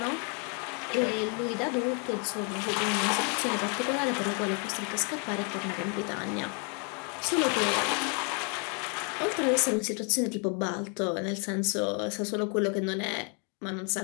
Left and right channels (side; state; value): right; quieter; 37.8 dB